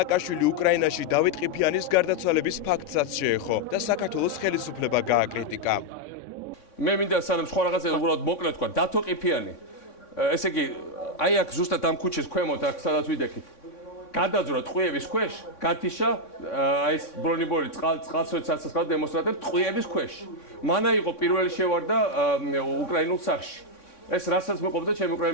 უკრაინაში დავით ყიფიანის გარდაცვალების ფაქტსაც შეეხო და საქართველოს ხელისუფლება გააკრიტიკა. მე მინდა სანამ სხვა რაღაცა უბრალოდ მოკლედ თქვა, დათო ყიფიანი. ესე იგი, აი აქ ზუსტად ამ ქუჩის ქვემოთ, აქ სადაც ვიდექით. გადაძვრა ტყვიების ქვეშ, გათიშა აი ეს ბრონიბორი წყალსაცავ დემონსტრანტებს ტყვიების ქვეშ. მანა იყო პირველი შევარდა უკრაინულ სახში. ეს რასაც მეყოფდა ჩემი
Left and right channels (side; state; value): right; late; 3.6 ms